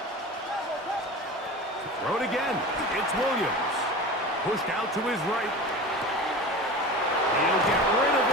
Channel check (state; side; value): normal; both; correlation 0.33